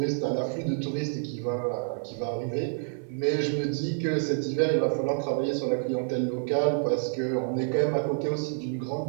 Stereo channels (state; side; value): silent; left; 55 dB below the other